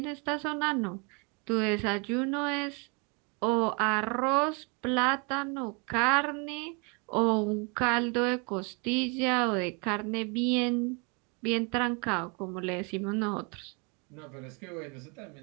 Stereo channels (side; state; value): left; quieter; 33.0 dB